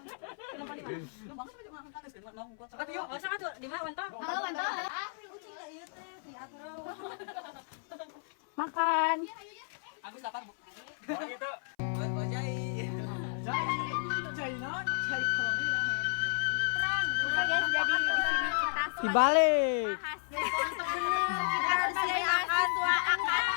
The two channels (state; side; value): silent; right; 56 dB below the other